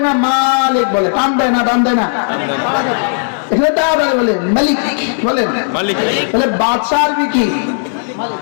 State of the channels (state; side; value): silent; right; digital silence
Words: না মালিক বলে? টান দেয় না, টান দেয় না। এখানে তাড়াতাড়ি বলে মালিক বলেন। মালিক তাহলে বাদশাহ আরবি কি?